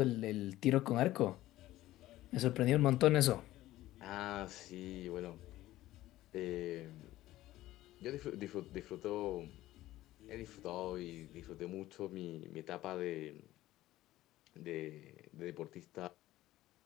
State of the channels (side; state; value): right; quieter; 15.7 dB